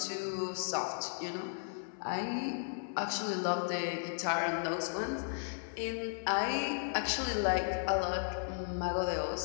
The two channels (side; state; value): right; silent; 54 dB below the other